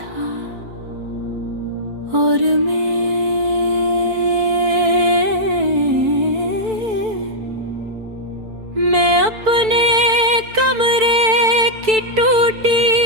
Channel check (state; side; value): late; left; 4.5 ms